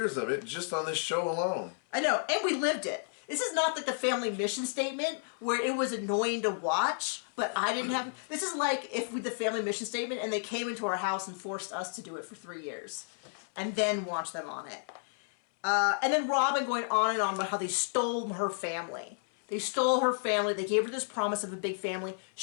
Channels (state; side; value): silent; right; 57 dB below the other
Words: of it just on this show alone. I know, and we lived it. This is not like the family mission statement where it was annoying to watch, but I didn't have... This is like if we the family mission statement and they came into our house and forced us to do it for 3 years and then watch them on it. And then Robyn going on and on about how they stole her family. They stole her family. They gave her this promise of a big family.